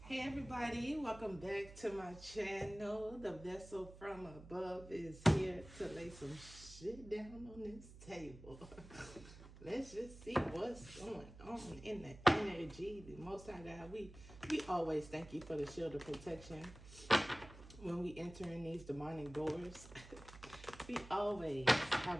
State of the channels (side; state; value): right; noise; hum, 16 dB below the sound